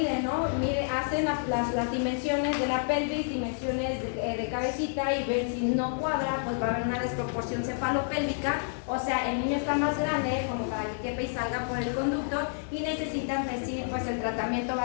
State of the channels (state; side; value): silent; right; digital silence